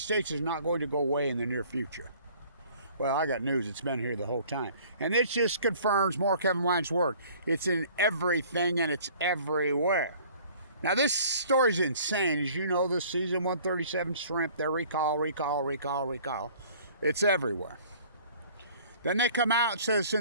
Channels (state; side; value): inverted; both; correlation -0.52